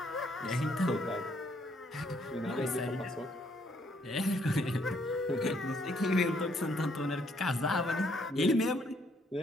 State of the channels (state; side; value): normal; both; correlation 0.69